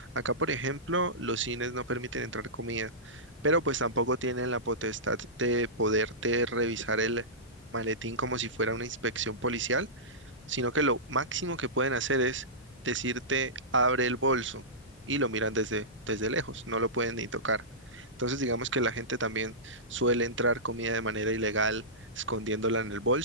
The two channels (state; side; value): normal; both; correlation -0.16